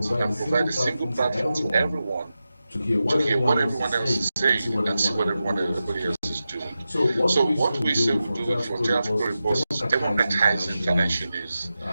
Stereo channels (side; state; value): both; inverted; correlation -0.92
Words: and provide a single platform to everyone to hear what everyone else is saying and see what everybody else is doing. So what we say we do with Frontier Africa Reports is democratizing financial news